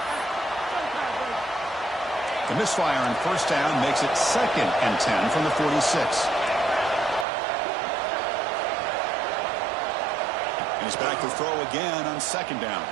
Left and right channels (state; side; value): drops out; left; at 7.2 s